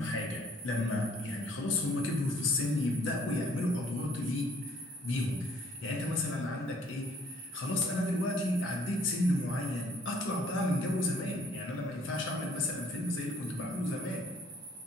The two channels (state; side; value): normal; both; correlation 0.60